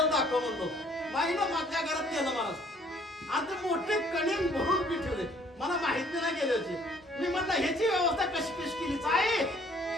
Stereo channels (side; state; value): both; normal; correlation 0.60